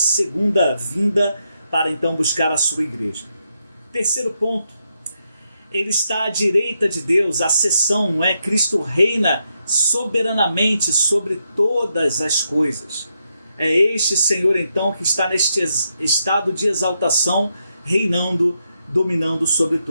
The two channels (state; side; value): inverted; both; correlation -0.81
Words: vinda, para então buscar a sua igreja. Terceiro ponto, ele está à direita de Deus, a seção, não é? Cristo reina soberanamente sobre todas as coisas. É este Senhor então que está neste estado de exaltação, reinando, dominando sobre